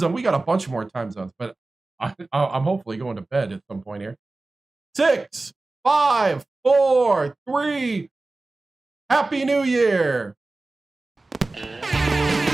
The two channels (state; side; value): quieter; left; 3.2 dB